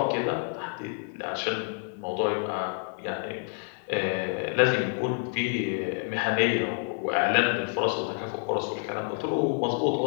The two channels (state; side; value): silent; right; 55 dB below the other